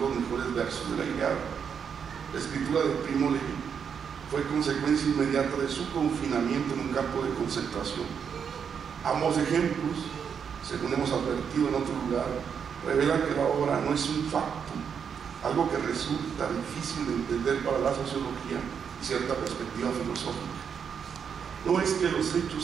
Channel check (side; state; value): left; quieter; 7.1 dB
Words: mejores versos de la Ilíada. La escritura de Primo Levi fue consecuencia inmediata de su confinamiento en un campo de concentración. Ambos ejemplos, según hemos advertido en otro lugar, revelan que la obra no es un facto, algo que resulta difícil de entender para la sociología y cierta perspectiva filosófica. No es que los